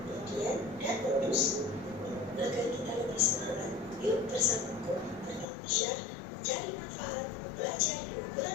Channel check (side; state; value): right; drops out; at 5.5 s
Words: median, dan modus. Agar kita lebih semangat, yuk bersamaku belajar mencari manfaat mempelajari